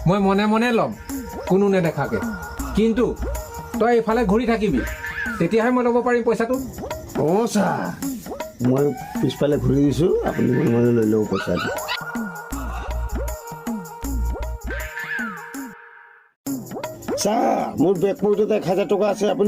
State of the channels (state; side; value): identical; both; correlation 1.00